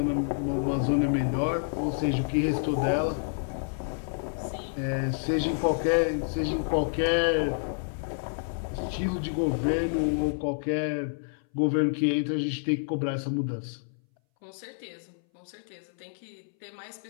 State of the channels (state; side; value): silent; right; 59 dB below the other